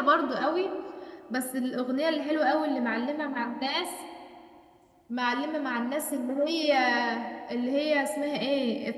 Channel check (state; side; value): identical; both; correlation 1.00